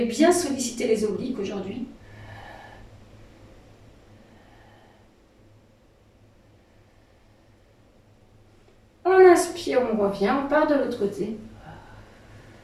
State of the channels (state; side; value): identical; both; correlation 1.00